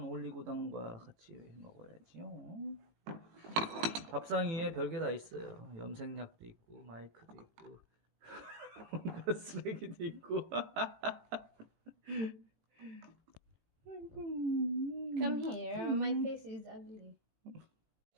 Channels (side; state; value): left; late; 18 ms